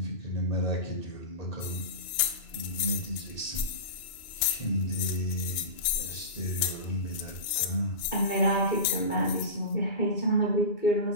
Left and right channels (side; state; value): right; late; 2.8 ms